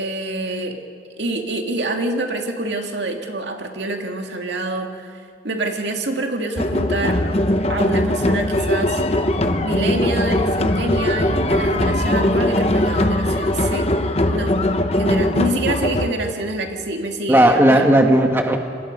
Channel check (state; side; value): normal; both; correlation 0.60